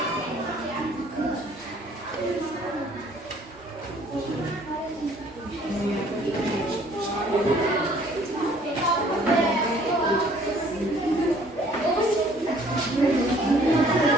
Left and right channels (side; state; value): both; normal; correlation 0.58